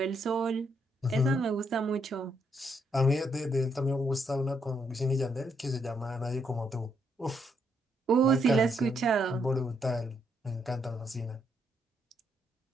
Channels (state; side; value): normal; both; correlation 0.75